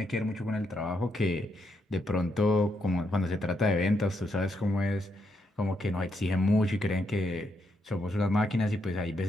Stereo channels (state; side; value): normal; both; correlation 0.79